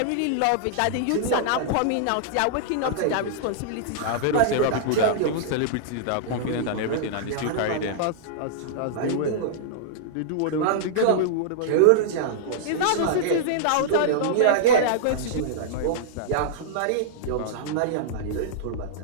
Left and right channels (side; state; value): both; different; correlation -0.02